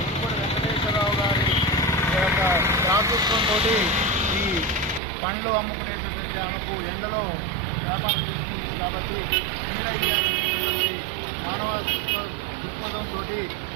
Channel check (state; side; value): drops out; left; at 5.0 s